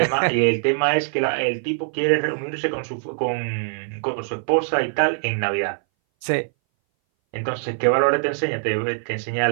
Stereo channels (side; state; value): left; silent; 60 dB below the other